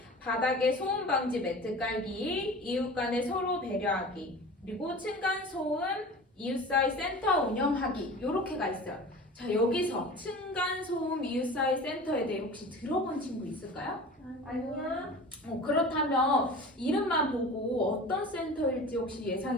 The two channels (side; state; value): both; normal; correlation 0.38